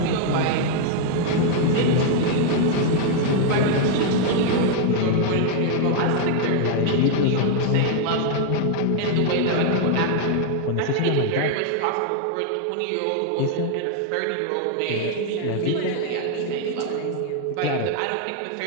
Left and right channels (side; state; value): both; different; correlation 0.00